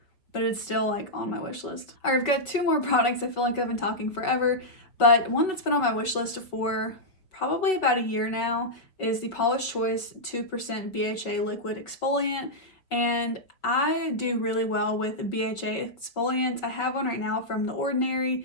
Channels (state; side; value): late; right; 5.3 ms